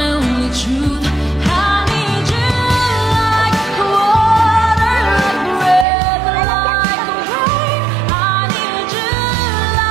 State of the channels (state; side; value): drops out; left; at 5.9 s